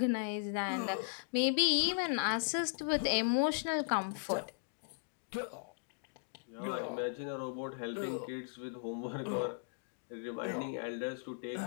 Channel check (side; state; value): right; silent; digital silence